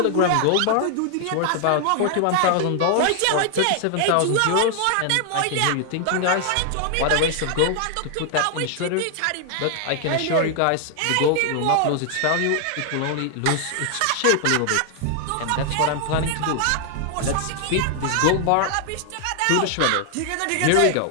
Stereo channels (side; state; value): both; different; correlation 0.00